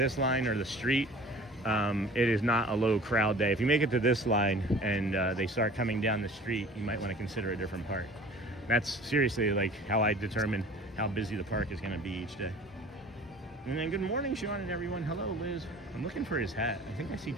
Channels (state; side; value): normal; both; correlation 0.45